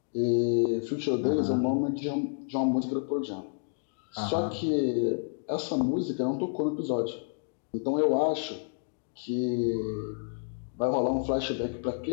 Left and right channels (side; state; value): right; silent; digital silence